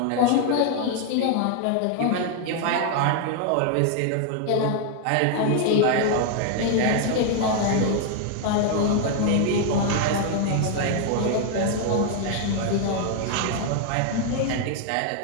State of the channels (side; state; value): both; different; correlation 0.00